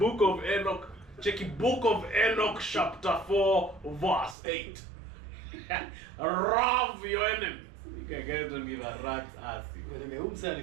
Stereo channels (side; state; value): left; drops out; at 4.4 s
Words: of Enoch. Check it, Book of Enoch, chapter 4, verse 8. Love your enemies. You guys don't give a rat's ass. Umse